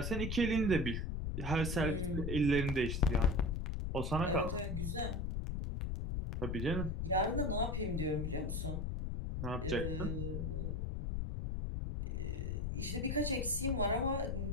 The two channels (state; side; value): noise; left; rumble, 1 dB below the sound